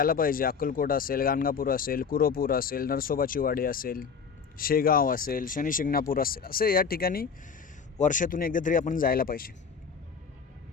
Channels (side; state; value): right; quieter; 6.1 dB